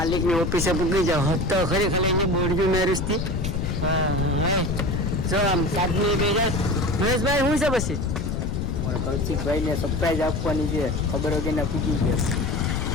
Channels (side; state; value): left; noise; rumble, 1 dB below the sound